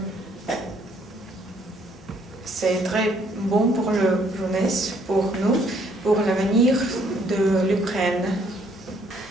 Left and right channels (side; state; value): both; normal; correlation 0.66